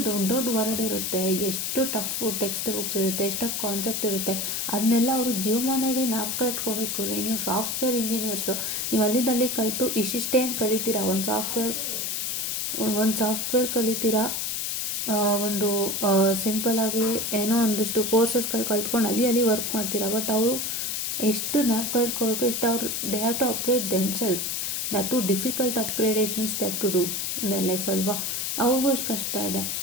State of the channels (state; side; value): noise; left; hiss, 1 dB below the sound